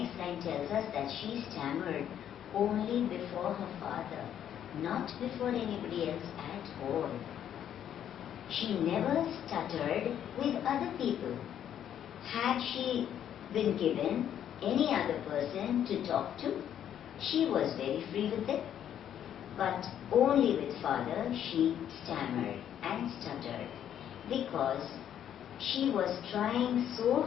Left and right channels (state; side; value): quieter; right; 10.0 dB